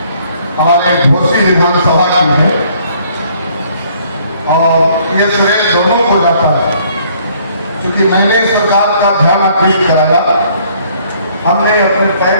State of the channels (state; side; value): inverted; both; correlation -0.62